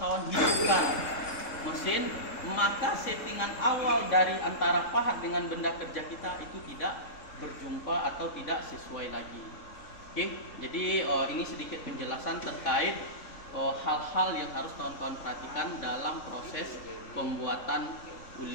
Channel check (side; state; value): right; late; 3.5 ms